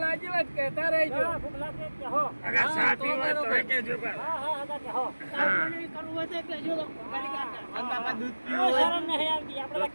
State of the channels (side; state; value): both; inverted; correlation -1.00